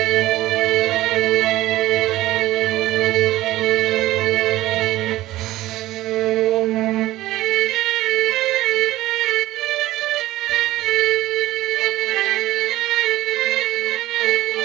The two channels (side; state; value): left; quieter; 16.2 dB